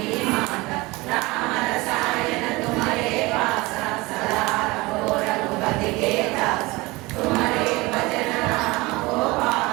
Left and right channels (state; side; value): quieter; left; 22.6 dB